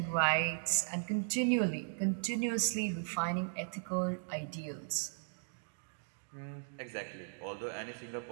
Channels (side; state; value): left; silent; digital silence